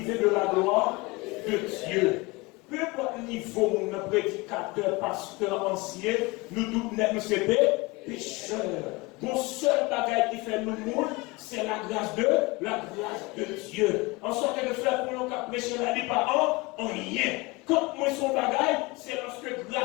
de la gloire de Dieu. Peu importe le niveau, mon prédicateur, pasteur, ancien, nous tous sommes pécheurs. Mon seul bagage qui fait nous mourir, c'est la grâce de Dieu. En sorte que le frère pour nous prêcher la vie par en rien. Quand moi son bagage, c'est lorsque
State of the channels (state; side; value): quieter; right; 24.0 dB